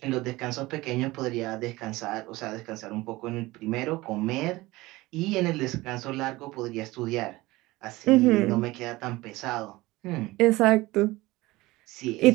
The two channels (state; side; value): quieter; left; 19.8 dB